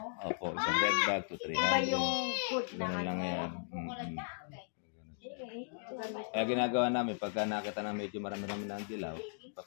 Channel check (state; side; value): silent; right; digital silence